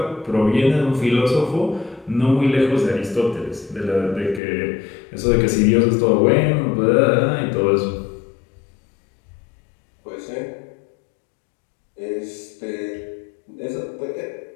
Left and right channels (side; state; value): right; drops out; at 4.4 s